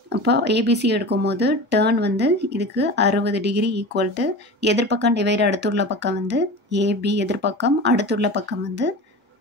அப்போ ஏபிசி எடுக்கும் போது டேர்ன் வந்து இதுக்கு 60 டிகிரி ஈக்குவல் டு எதிர்பக்கம் டிவைடு அடுத்துள்ள பக்கம் வந்து ஏபி, எதிர்பக்கம் அடுத்துள்ள பக்கம் வந்து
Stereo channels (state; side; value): normal; both; correlation 0.32